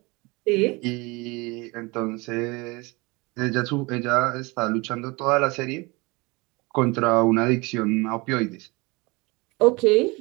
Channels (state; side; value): quieter; left; 25.6 dB